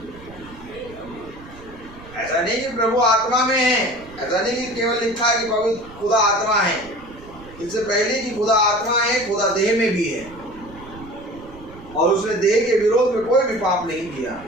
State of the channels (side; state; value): right; noise; rumble, 19 dB below the sound